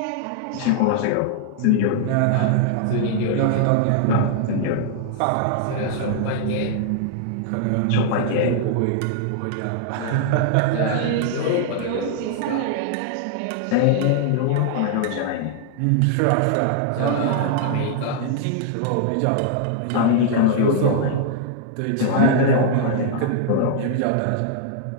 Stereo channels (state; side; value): different; both; correlation -0.01